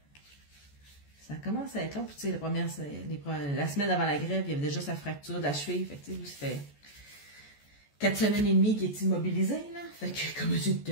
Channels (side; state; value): right; late; 14 ms